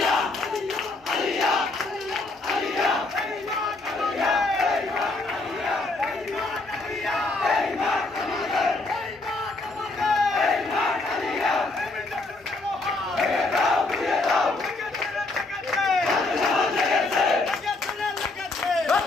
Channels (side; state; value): right; quieter; 3.2 dB